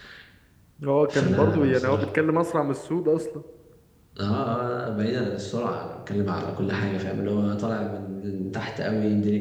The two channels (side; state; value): both; identical; correlation 1.00